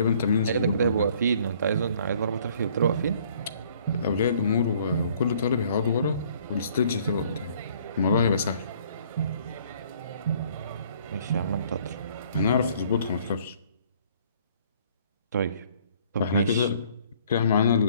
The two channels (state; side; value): inverted; both; correlation -0.59